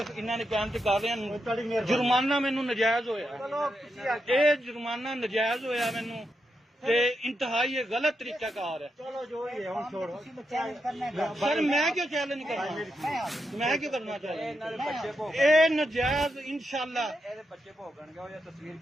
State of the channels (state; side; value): normal; both; correlation 0.85